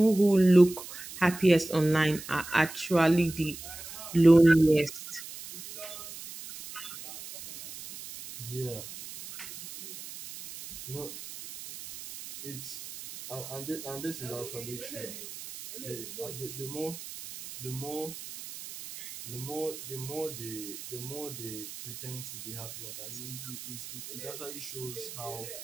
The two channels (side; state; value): right; noise; hiss, 12 dB below the sound